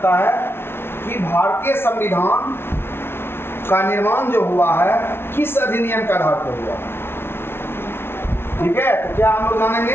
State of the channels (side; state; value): right; late; 0.12 ms